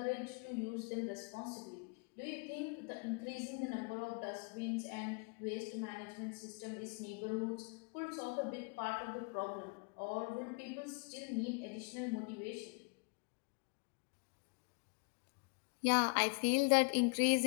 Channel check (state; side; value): quieter; right; 34.9 dB